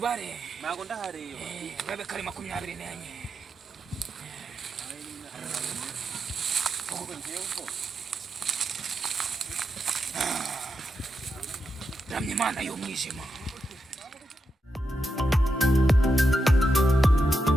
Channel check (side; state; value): both; normal; correlation 0.86